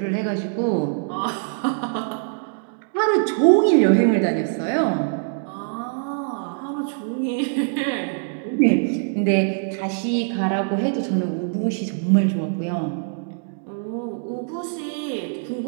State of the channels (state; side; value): silent; left; digital silence